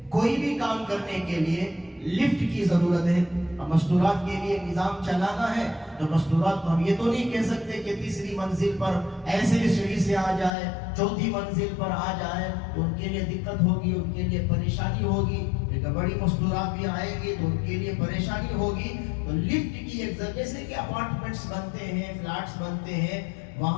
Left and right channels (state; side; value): drops out; right; at 10.5 s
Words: کوئی بھی کام کرنے کے لیے لفٹ کی ضرورت ہے۔ مستورات کے لیے نظام چلانا ہے تو مستورات کو ہم یہ تو نہیں کہہ سکتے کہ تیسری منزل پر ایسے سیڑھی سے آ جائے، چوتھی منزل پر آ جائے، تو ان کے لیے دقت ہوگی، ان کے لیے پریشانی ہوگی، لیکن بڑی مستورات بھی آئیں گی تو ان کے لیے پریشانی ہوگی۔ تو لفٹ کی ایک ضرورت، جیسے کہ اپارٹمنٹس بنتے ہیں، فلیٹس بنتے ہیں،